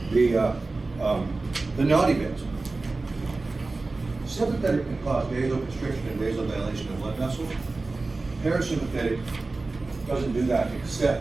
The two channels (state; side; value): quieter; left; 3.5 dB